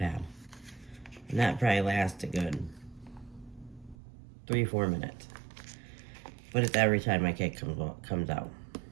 And that probably lasts a good 3-4 minutes. But it's every time my kid comes out.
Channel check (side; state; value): left; drops out; at 4.0 s